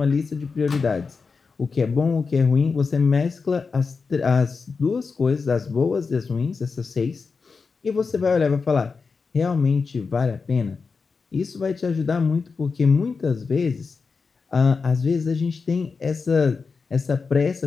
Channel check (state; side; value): quieter; right; 4.8 dB